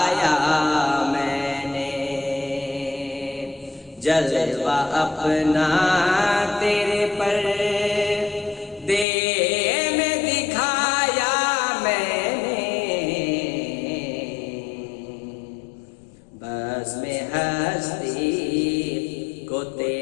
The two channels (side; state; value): right; drops out; at 9.1 s